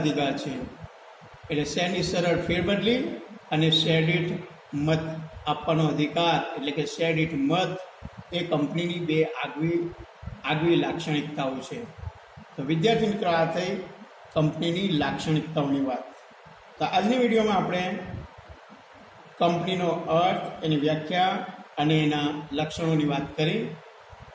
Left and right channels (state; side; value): identical; both; correlation 1.00